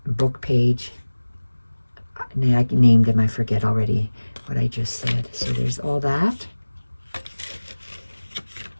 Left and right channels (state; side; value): inverted; both; correlation -1.00